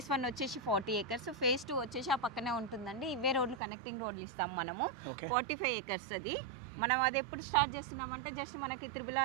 1 వచ్చేసి 40 acres, ఫేస్ 2 వచ్చేసి ఆ పక్కనే ఉంటుందండి. ఇవే రోడ్లు కనెక్టింగ్ రోడ్లు ఇస్తాం మనము. 45 acres అది. మనం అది ఎప్పుడు స్టార్ట్ చేస్తున్నామంటే జస్ట్ మనకి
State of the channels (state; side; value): drops out; left; at 3.6 s